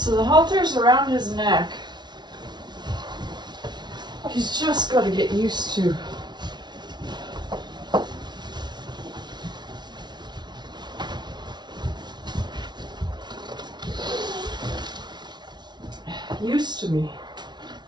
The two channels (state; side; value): late; left; 0.20 ms